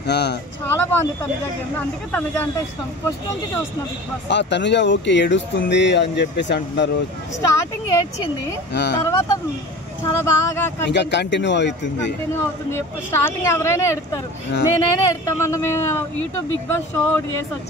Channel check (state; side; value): normal; both; correlation 0.37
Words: చాలా బాగుంది తనుజ గేమ్. అందుకే తనుజ అంటే ఇష్టం. ఫస్ట్ నుంచి చూస్తున్నా బిగ్ బాస్. తనుజ ఓకే ఏడుస్తుంది అని చెప్పేసి అంటున్నారు. స్టార్టింగ్ ఏడ్చింది, తర్వాత చాలా బాగా ఇంకా కంటిన్యూ అవుతుంది. స్టార్టింగ్ ఎవరైనా ఎడతారు, నేనైనా ఎడతాం. మనం యూట్యూబ్ బిగ్ బాస్ షో ఒకటి చేసి